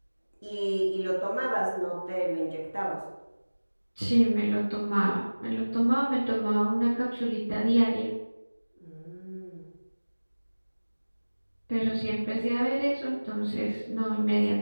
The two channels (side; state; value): both; inverted; correlation -1.00